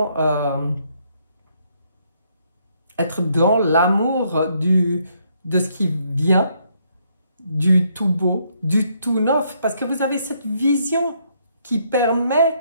être dans l'amour de ce qui vient, du tout beau, du tout neuf. Parce que vous avez cette vision qui permet,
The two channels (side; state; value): both; inverted; correlation -0.72